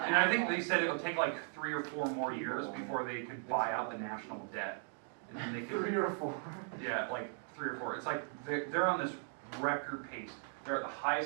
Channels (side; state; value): left; silent; 53 dB below the other